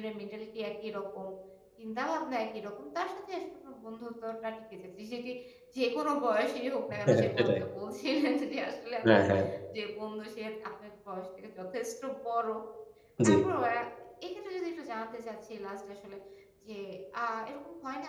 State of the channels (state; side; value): identical; both; correlation 1.00